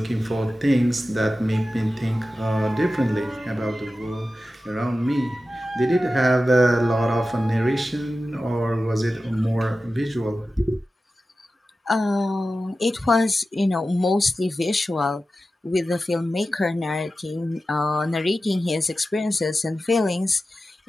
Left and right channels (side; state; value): both; normal; correlation 0.93